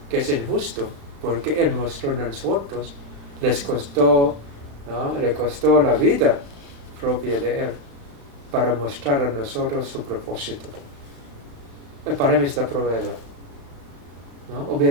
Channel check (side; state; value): left; late; 35 ms